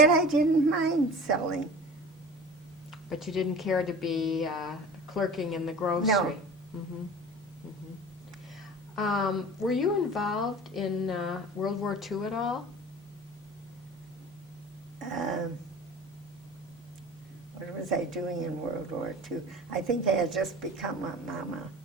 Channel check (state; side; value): normal; both; correlation 0.38